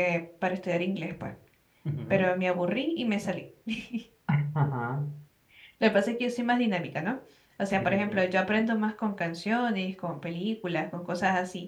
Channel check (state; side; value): identical; both; correlation 1.00